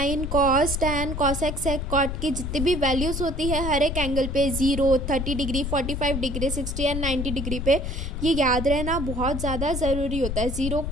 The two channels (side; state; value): left; noise; rumble, 4 dB below the sound